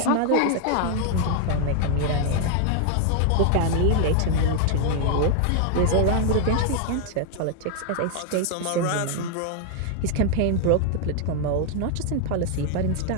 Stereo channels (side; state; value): both; different; correlation 0.00